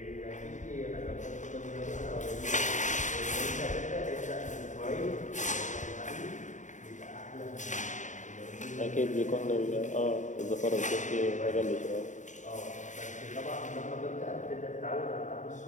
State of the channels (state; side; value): late; right; 0.36 ms